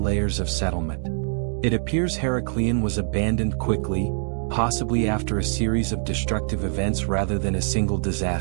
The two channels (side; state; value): left; silent; 63 dB below the other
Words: of settlement. It appears Heracleion was abandoned quickly, possibly after a series of destructive events rather than a single